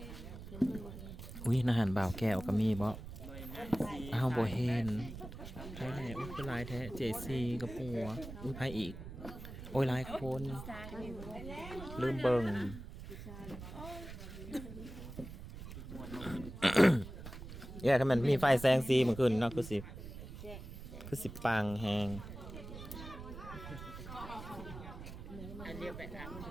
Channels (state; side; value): noise; right; rumble, 11 dB below the sound